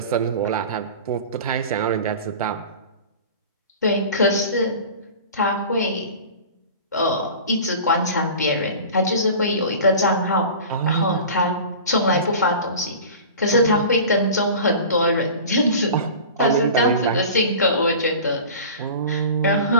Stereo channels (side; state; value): both; inverted; correlation -0.37